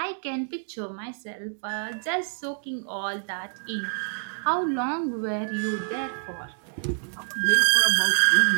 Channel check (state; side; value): silent; left; digital silence